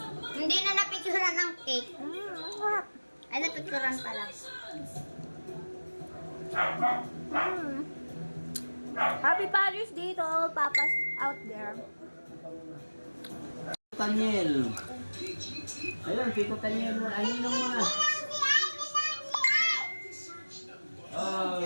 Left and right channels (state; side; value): inverted; both; correlation -1.00